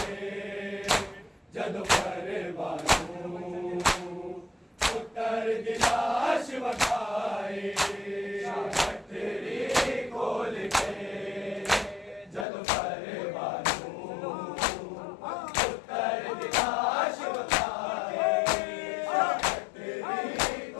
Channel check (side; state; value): right; drops out; at 12.5 s